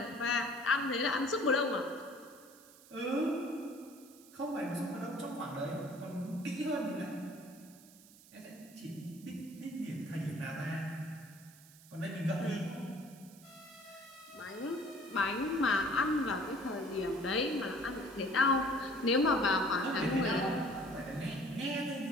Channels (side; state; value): right; noise; hiss, 22 dB below the sound